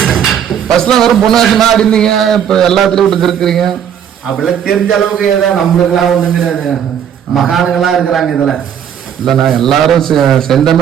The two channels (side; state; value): left; quieter; 8.8 dB